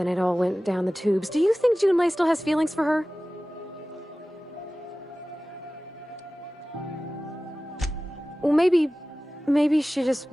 it all went down the tubes. Do you think Junlei still has feelings for her? Well, maybe she just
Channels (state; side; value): normal; both; correlation 0.97